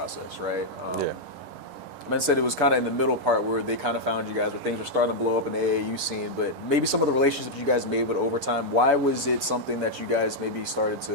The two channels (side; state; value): right; late; 10 ms